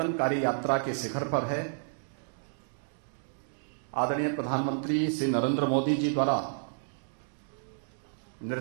यात्रा के शिखर पर है। आदरणीय प्रधानमंत्री श्री नरेंद्र मोदी जी द्वारा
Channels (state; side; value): silent; left; digital silence